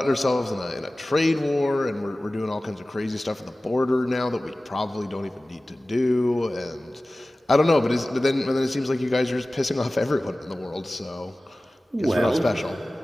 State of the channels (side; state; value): both; normal; correlation 0.97